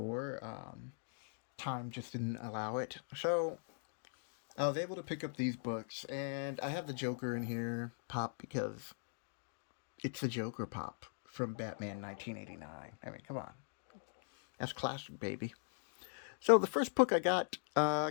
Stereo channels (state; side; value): silent; right; digital silence